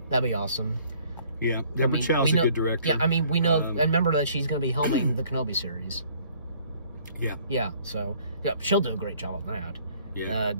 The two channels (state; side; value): inverted; both; correlation -0.59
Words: That'd be awesome. Yeah, Deborah Chow's a good director. Yeah, I mean, we know, and remember that she's going to be helming the Kenobi series. Yeah. Yeah, so, yeah, she'll do a great job on that. Yeah.